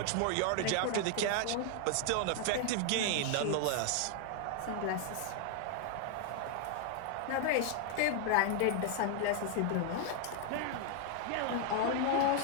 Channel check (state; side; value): different; both; correlation 0.00